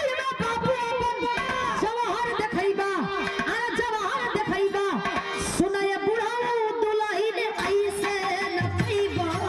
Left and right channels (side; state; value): both; identical; correlation 1.00